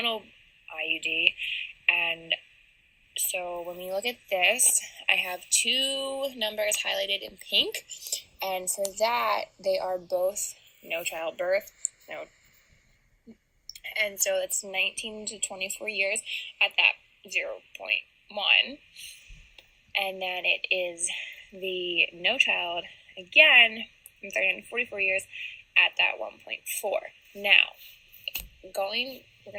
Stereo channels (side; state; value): both; identical; correlation 1.00